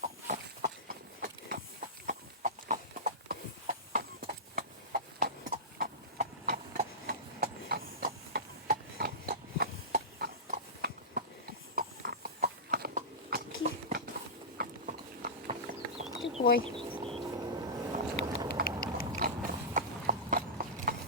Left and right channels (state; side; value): normal; both; correlation -0.17